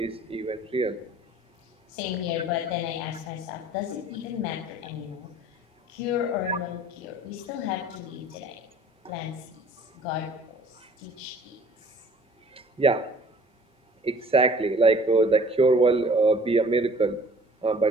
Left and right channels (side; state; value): both; normal; correlation 0.51